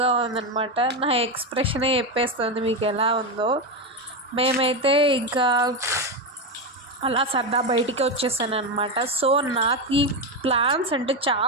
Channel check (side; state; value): both; normal; correlation 0.11